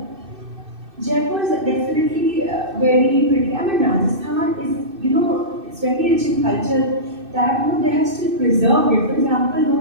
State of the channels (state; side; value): late; left; 2.6 ms